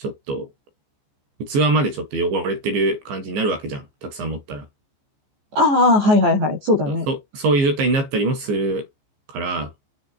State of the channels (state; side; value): late; left; 15 ms